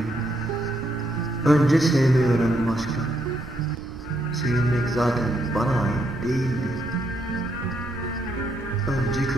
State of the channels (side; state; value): right; noise; rumble, 14 dB below the sound